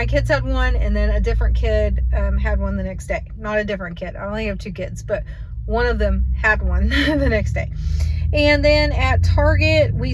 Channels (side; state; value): both; identical; correlation 1.00